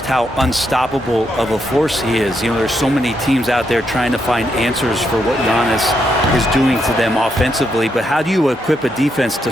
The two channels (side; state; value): both; normal; correlation 0.80